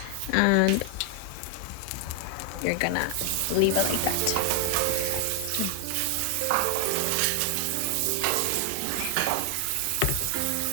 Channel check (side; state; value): both; different; correlation 0.00